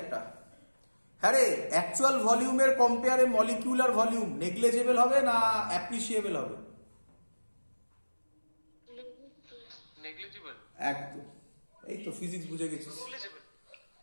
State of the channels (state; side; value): inverted; both; correlation -1.00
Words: একটা। হ্যাঁ রে, অ্যাকচুয়াল ভলিউমের কম্পেয়ারে মলিকিউলার ভলিউম নেগলিজেবল হবে না অ্যাপ্রিসিয়েবল হবে? নেগলিজিবল। একদম, এই তো ফিজিক্স বুঝে গেছিস। নেগলিজিবল।